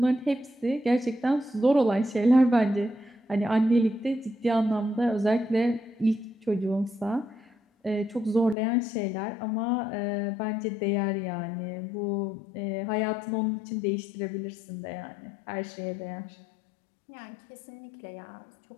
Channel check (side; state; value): right; drops out; at 8.6 s